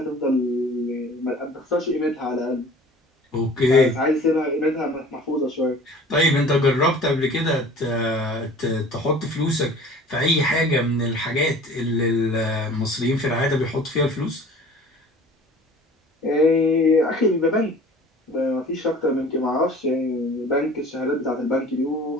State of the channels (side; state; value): both; normal; correlation 0.45